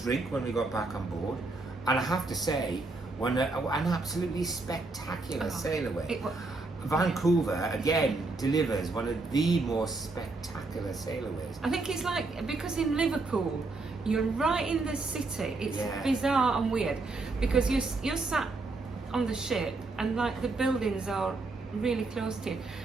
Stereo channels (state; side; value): quieter; left; 3.5 dB